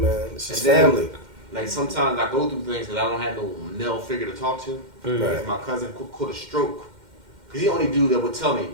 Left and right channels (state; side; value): late; left; 2.1 ms